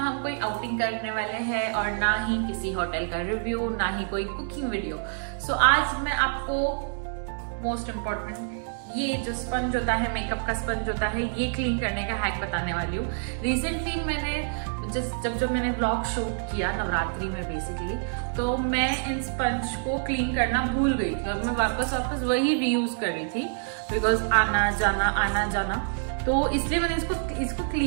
कोई आउटिंग करने वाले हैं और ना ही किसी होटल का रिव्यू, ना ही कोई कुकिंग वीडियो। सो आज मैं आपको मोस्ट इम्पोर्टेंट ये जो स्पंज होता है, मेकअप का स्पंज होता है, ये क्लीन करने का हैक बताने वाली हूँ। रिसेंटली मैंने जब मैंने व्लॉग शूट किया नवरात्रि में बेसिकली, तो मैं इन स्पंज को क्लीन करना भूल गई थी और मैं वापस वही रीयूज कर रही थी बिकॉज आना जाना, तो इसलिए मैंने इसको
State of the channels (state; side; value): silent; left; digital silence